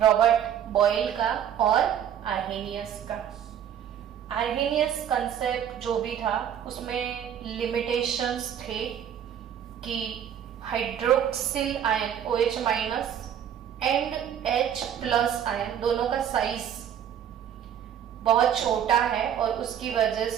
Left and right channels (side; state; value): left; quieter; 9.5 dB